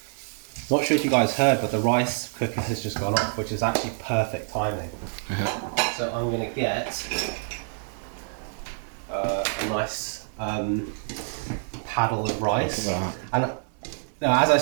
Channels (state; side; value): silent; left; 61 dB below the other